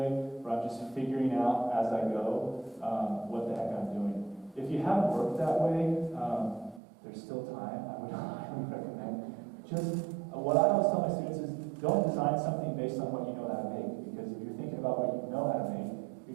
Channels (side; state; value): left; drops out; at 6.8 s